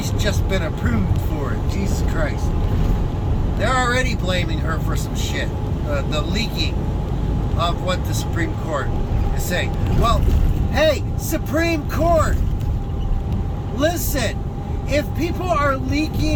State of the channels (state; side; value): identical; both; correlation 1.00